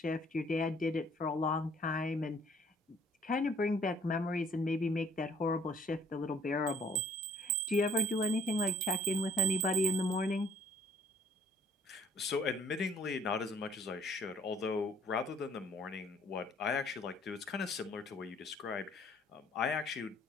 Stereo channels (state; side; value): normal; both; correlation 0.57